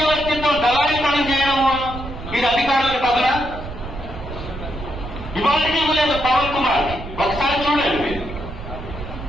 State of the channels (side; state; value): right; noise; rumble, 10 dB below the sound